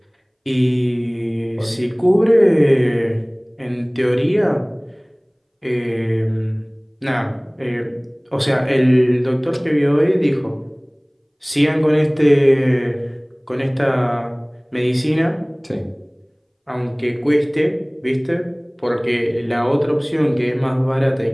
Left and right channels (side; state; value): both; identical; correlation 1.00